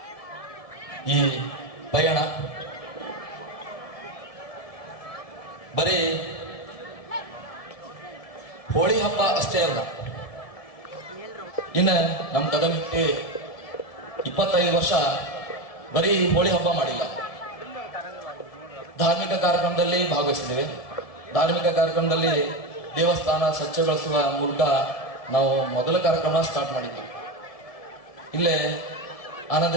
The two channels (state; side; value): late; right; 1.7 ms